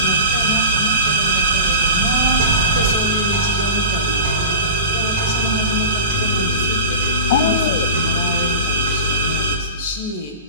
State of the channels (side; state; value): both; inverted; correlation -0.31